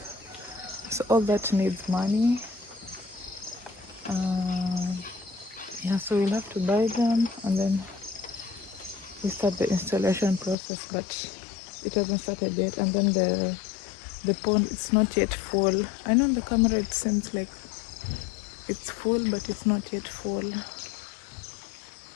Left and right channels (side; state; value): right; drops out; at 10.6 s